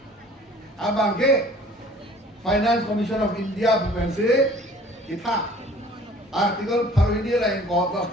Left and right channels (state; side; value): normal; both; correlation 0.51